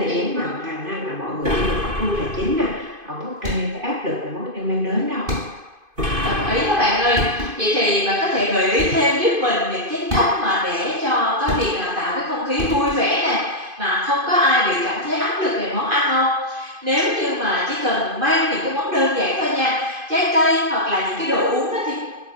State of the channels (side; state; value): left; late; 2.5 ms